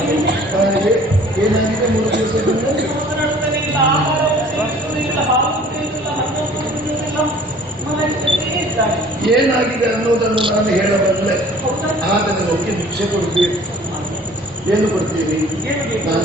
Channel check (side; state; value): both; normal; correlation 0.51